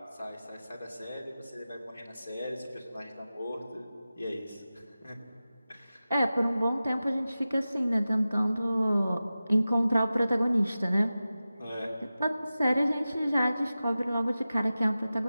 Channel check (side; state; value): both; inverted; correlation -0.95